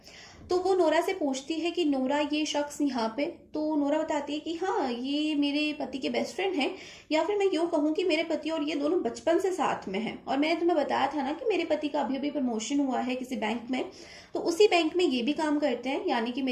तो वो नोरा से पूछती है कि नोरा, ये शख्स यहाँ पे? तो नोरा बताती है कि हाँ, ये मेरे पति के बेस्ट फ्रेंड हैं, या फिर मैं यूँ कहूँ कि मेरे पति और ये दोनों बचपन से साथ में हैं, और मैंने तुम्हें बताया था ना कि मेरे पति का अभी अभी प्रमोशन हुआ है किसी बैंक में, तो उसी बैंक में ये भी काम करते हैं, यानी कि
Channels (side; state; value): both; identical; correlation 1.00